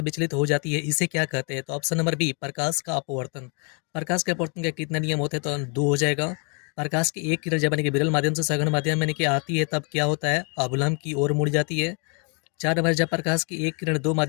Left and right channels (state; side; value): quieter; right; 36.4 dB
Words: विचलित हो जाती है, इसे क्या कहते हैं? तो ऑप्शन नंबर बी, प्रकाश का अपवर्तन। प्रकाश के अपवर्तन के कितने नियम होते हैं? तो 2 हो जाएगा। प्रकाश की एक किरण जब यानी कि विरल माध्यम से सघन माध्यम में यानी कि आती है तब क्या होता है? अवलंब की ओर मुड़ जाती है। 4 नंबर, जब प्रकाश की एक किरण दो